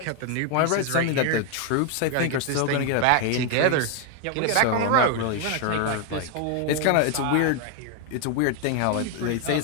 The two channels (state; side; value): different; both; correlation 0.01